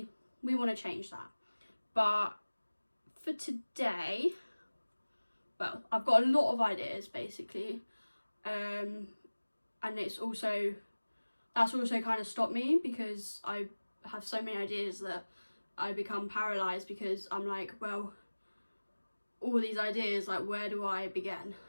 we want to change that. But for today, well, I've got a lot of ideas basically, and that's also kind of stopped me because I have so many ideas that I become paralysed because I'm like, well, all these ideas, like, where do I begin?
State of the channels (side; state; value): both; inverted; correlation -1.00